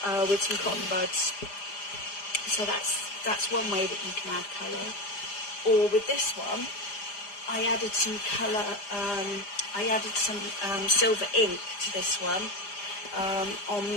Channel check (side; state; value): right; late; 5.0 ms